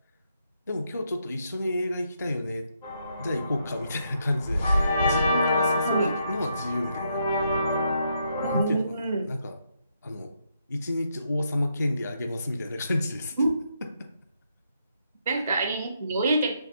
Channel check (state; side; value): inverted; both; correlation -0.78